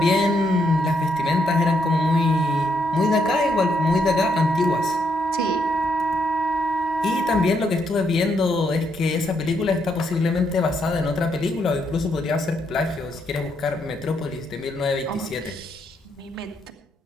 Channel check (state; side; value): normal; both; correlation 0.76